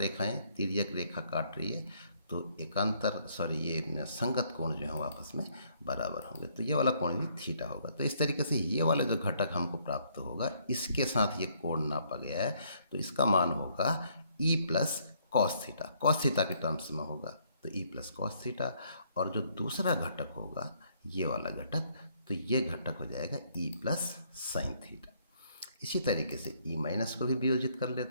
तिर्यक रेखा काट रही है, तो एकांतर ये संगत कोण जो है वो आपस में बराबर होंगे, तो ये वाला कोण भी थीटा होगा। तो इस तरीके से ये वाला जो घटक हमको प्राप्त होगा इसके साथ ये कोण नापा गया है, तो इसका मान होगा ई plus cos theta. Cos theta के टर्म्स में होगा तो ई प्लस कॉस थीटा, और जो दूसरा घटक होगा ये वाला घटक, तो ये घटक हो जाएगा ई प्लस साइन थीटा। इसी तरीके से ई माइनस को भी वियोजित कर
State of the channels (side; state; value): both; inverted; correlation -0.68